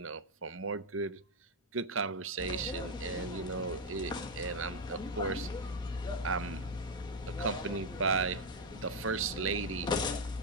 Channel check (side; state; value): both; normal; correlation 0.04